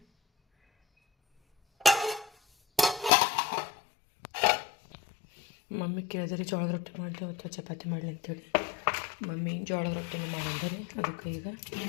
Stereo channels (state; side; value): drops out; right; at 3.1 s